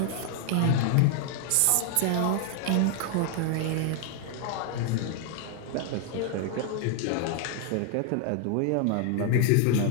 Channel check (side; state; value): both; different; correlation 0.00